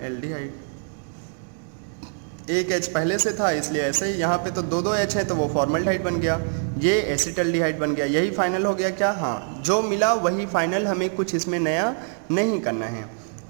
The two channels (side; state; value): left; silent; 56 dB below the other